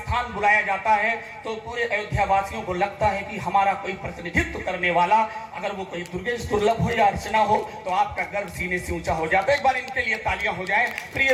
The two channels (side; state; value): both; identical; correlation 1.00